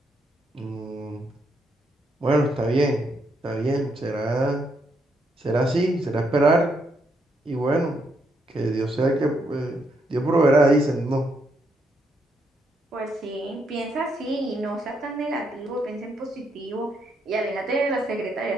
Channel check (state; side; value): normal; both; correlation 0.77